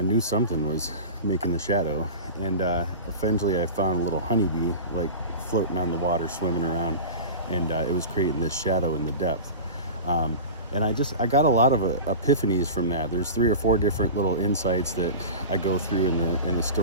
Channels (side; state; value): both; inverted; correlation -0.32